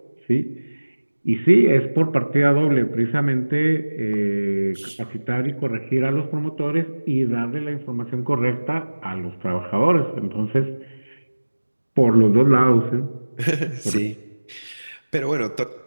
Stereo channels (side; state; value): both; inverted; correlation -1.00